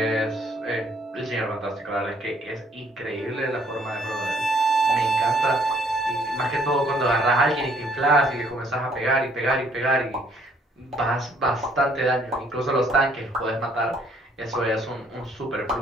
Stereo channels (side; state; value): both; normal; correlation 0.64